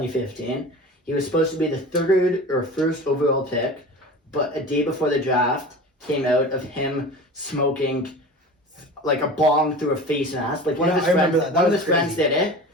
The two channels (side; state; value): both; normal; correlation 0.35